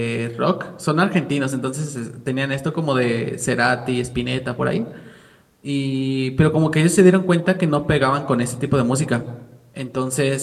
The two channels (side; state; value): both; identical; correlation 1.00